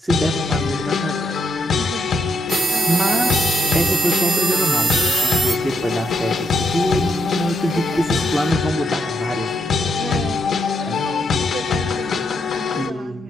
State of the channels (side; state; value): both; normal; correlation 0.80